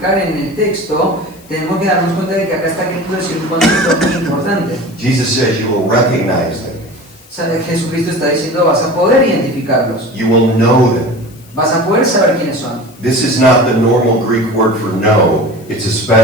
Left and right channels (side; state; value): left; noise; hiss, 26 dB below the sound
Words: en el texto, tenemos que darnos cuenta de que acá está queriendo decir un concepto muy importante. Jesus says you will recognize them. O sea, Jesucristo está diciendo, vas a poder identificarlos, You will know them. vas a poder saber quiénes son. This is not the normal Greek word for know. It's a